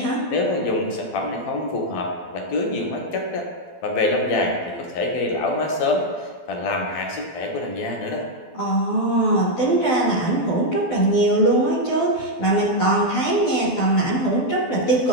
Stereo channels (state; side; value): late; right; 12 ms